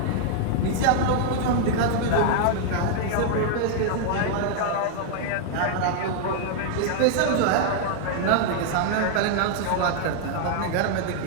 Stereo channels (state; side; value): different; both; correlation 0.00